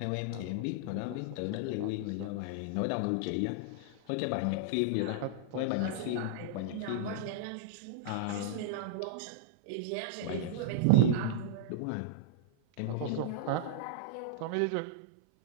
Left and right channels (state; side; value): different; both; correlation -0.01